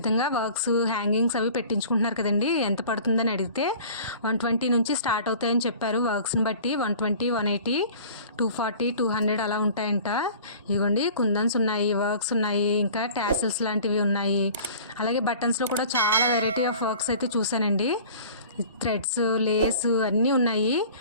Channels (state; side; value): inverted; both; correlation -0.45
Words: వర్క్స్ హ్యాంగింగ్స్ అవి పెట్టించుకుంటున్నారు కదండి. ఎంత పడుతుందని అడిగితే 120 నుంచి స్టార్ట్ అవుతాయని చెప్పారు. వర్క్స్ని బట్టి 120, 180, 240, 200 అలా ఉంటాయంట. ఇవ్వండి, కుందన్స్ ఉన్నాయి, వర్క్స్ ఉన్నాయి, ఇంకా టాసిల్స్ లాంటివి ఉన్నాయి. అలాగే బటన్స్లో కూడా చాలా వెరైటీ ఆఫ్ వర్క్స్ అయితే చూసానండి. థ్రెడ్స్, లేస్ అన్నీ ఉన్నాయి.